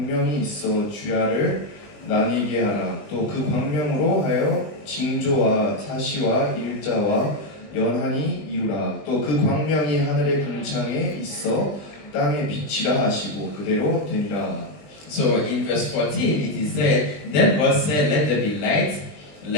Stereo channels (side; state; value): right; late; 20 ms